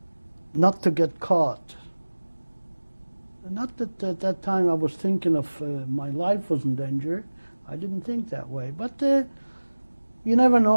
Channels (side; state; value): both; inverted; correlation -1.00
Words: not to get caught. Not that at that time I was thinking of my life was in danger. I didn't think that way. But you never